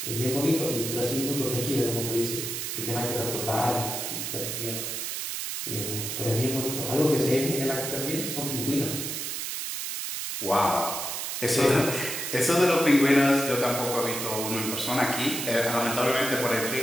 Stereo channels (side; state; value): right; noise; hiss, 4 dB below the sound